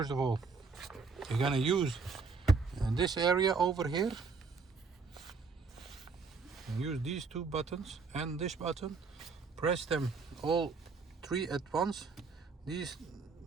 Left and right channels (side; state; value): left; quieter; 4.7 dB